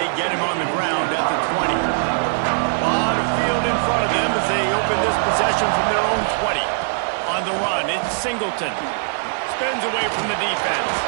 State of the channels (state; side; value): silent; left; 65 dB below the other